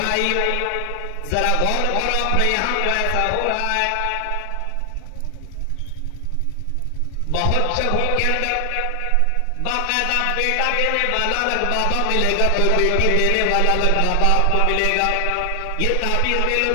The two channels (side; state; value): both; different; correlation 0.00